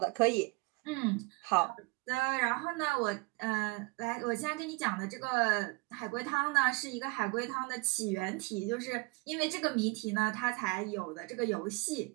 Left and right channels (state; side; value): quieter; left; 26.9 dB